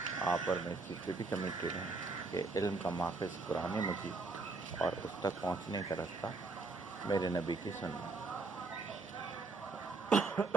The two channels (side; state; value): left; quieter; 3.7 dB